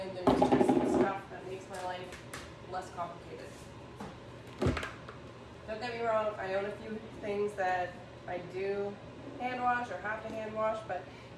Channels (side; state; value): both; identical; correlation 1.00